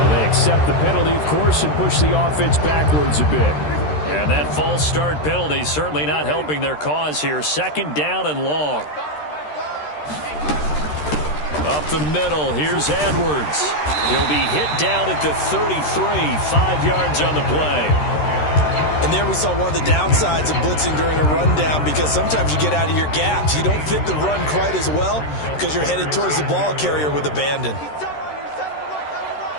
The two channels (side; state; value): right; late; 13 ms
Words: they accept the penalty, of course, and push the offense backwards a bit. And that false start penalty certainly not helping their cause here. 2nd down and long. Up the middle, here's Edwards. He'll be hit down at the 33, 5 yards on the play. And there we saw one of the downsides of blitzing during a rundown, because sometimes you get out of your gaps. You don't fit the run quite as well because you're headed towards the ball carrier with abandon.